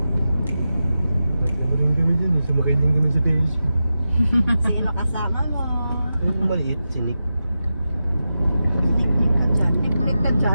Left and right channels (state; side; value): inverted; both; correlation -0.91